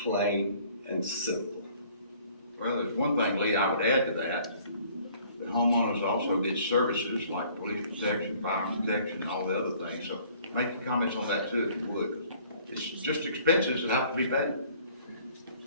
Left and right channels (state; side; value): inverted; both; correlation -0.56